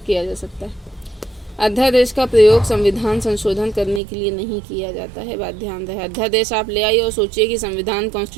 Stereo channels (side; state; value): left; drops out; at 4.0 s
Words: जा सकता है। अध्यादेश का प्रयोग संविधान संशोधन करने के लिए नहीं किया जाता है, बात ध्यान रहे। अध्यादेश आप ले आइए और सोचिए कि संविधान